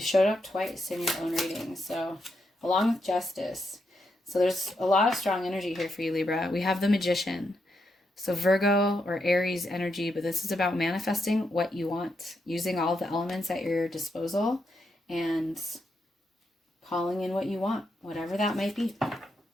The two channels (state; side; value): normal; both; correlation 0.82